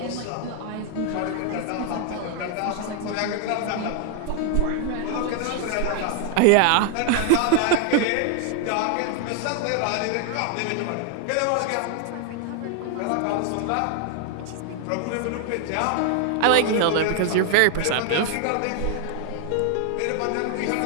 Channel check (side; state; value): both; different; correlation 0.00